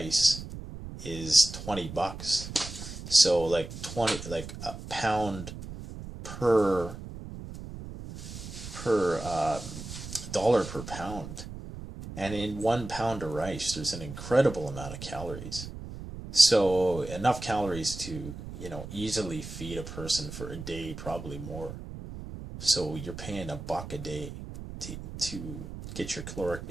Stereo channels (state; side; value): noise; right; rumble, 10 dB below the sound